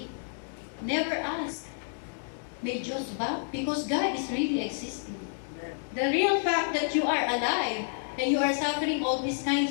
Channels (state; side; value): silent; right; digital silence